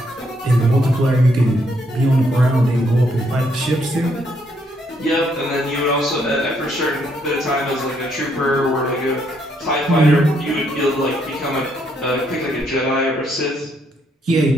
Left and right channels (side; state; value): both; normal; correlation 0.73